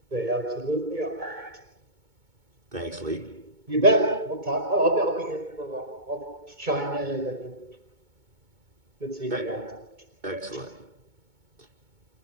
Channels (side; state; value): left; late; 2.2 ms